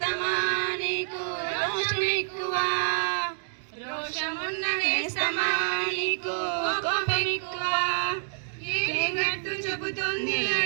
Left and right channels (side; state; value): left; silent; digital silence